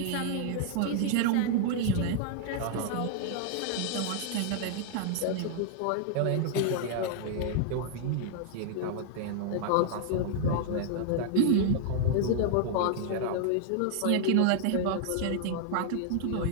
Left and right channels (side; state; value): both; different; correlation 0.00